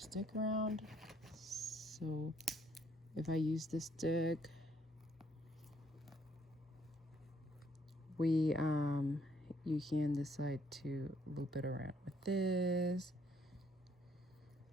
around. So if I use this stick, you can decide to loop it around with this.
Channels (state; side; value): normal; both; correlation 0.68